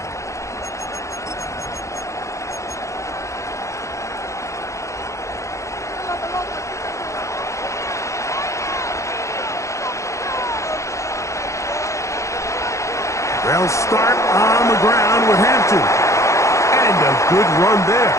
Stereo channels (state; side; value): late; right; 0.15 ms